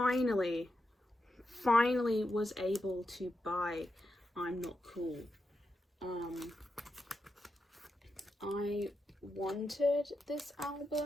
was able to buy I'm Not Cool. I wanted this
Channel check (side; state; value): both; normal; correlation 0.87